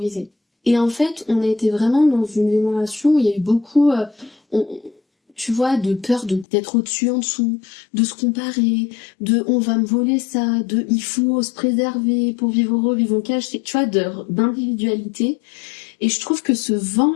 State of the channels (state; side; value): drops out; right; at 6.5 s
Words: Et en fait, on a été vraiment dans une génération où il y a eu beaucoup, tu vois, de peur d'être au-dessus, en dessous, de se comparer, de on va me voler ça, de il faut se préserver pour vivre heureux, vivre en cage, tu vois, d'individualité. Et je trouve que ce